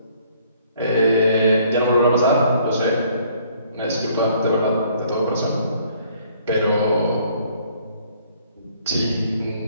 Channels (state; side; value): inverted; both; correlation -0.61